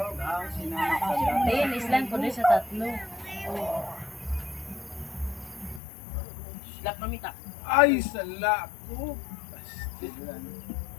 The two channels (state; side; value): drops out; right; at 5.8 s